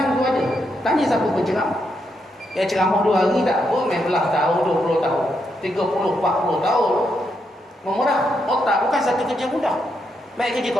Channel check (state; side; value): normal; both; correlation 0.80